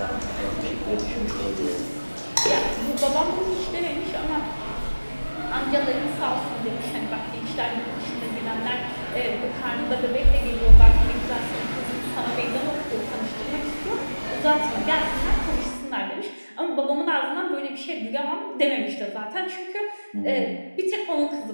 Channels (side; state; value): both; inverted; correlation -1.00